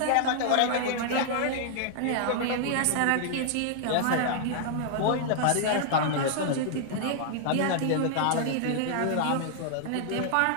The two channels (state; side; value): different; both; correlation -0.01